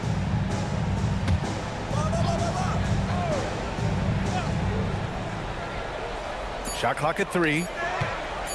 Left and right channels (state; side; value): identical; both; correlation 1.00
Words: Shot clock at 3.